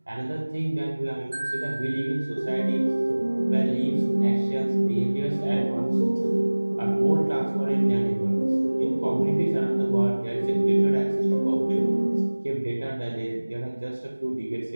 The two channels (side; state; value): both; inverted; correlation -1.00